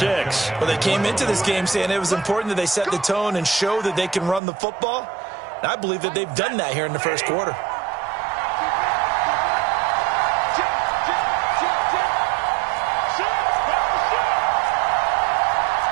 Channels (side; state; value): left; drops out; at 4.4 s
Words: Well, they came into this game saying it was important that they set the tone and show that they can run the football. And I believe that they've done that here in the first quarter.